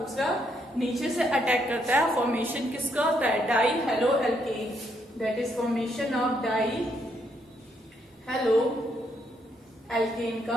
नीचे से अटैक करता है, फॉर्मेशन किसका होता है, di halo alkane, that is formation of di halo alkane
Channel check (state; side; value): normal; both; correlation 0.74